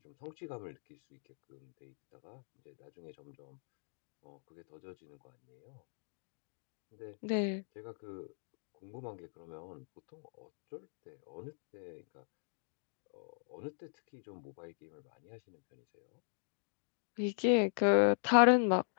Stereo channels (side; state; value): right; silent; digital silence